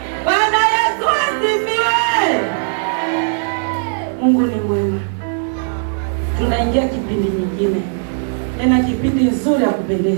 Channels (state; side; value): silent; left; digital silence